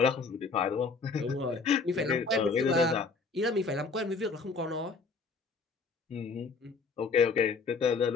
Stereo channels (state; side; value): quieter; right; 4.5 dB